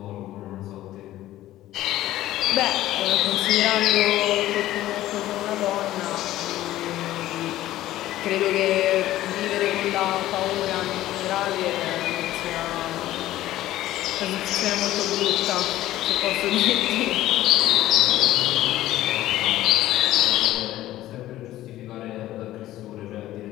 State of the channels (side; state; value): right; quieter; 14.7 dB